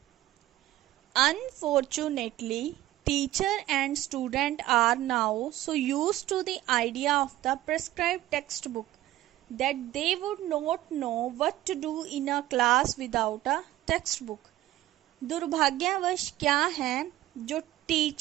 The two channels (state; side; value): quieter; left; 15.0 dB